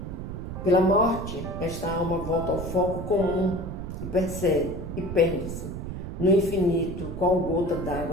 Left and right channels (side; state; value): right; noise; rumble, 7 dB below the sound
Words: Pela morte, esta alma volta ao foco comum e percebe e perde-se no infinito, qual gota